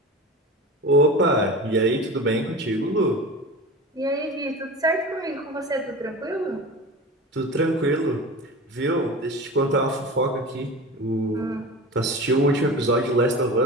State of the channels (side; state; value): both; normal; correlation 0.32